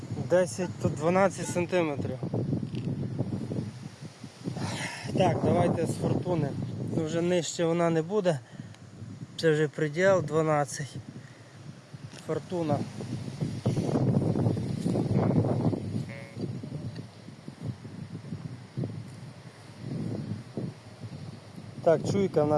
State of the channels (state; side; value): identical; both; correlation 1.00